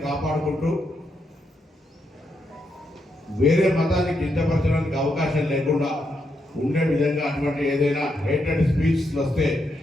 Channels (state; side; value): normal; both; correlation 0.81